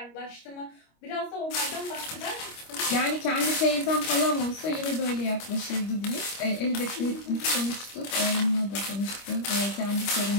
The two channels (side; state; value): right; late; 25 ms